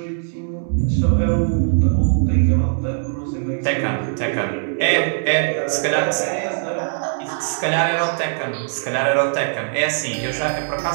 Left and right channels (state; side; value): silent; left; 65 dB below the other